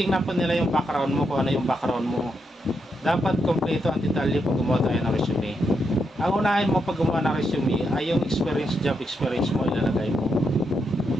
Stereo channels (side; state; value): both; normal; correlation 0.81